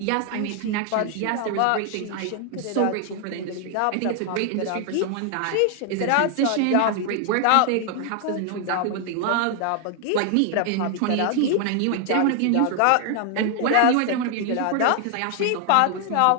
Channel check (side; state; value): both; different; correlation 0.00